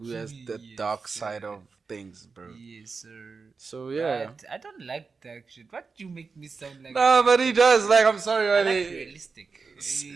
has the dark side of things, bro. Yes, sir. So yeah. But I don't like dark shit. What do you make me sound like? No, but he does. Like, I'm sorry, I like buddy. realistic.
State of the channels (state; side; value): quieter; left; 4.7 dB